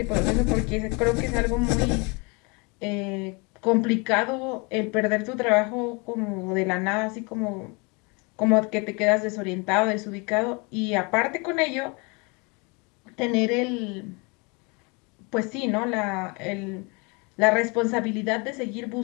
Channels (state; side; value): quieter; right; 30.1 dB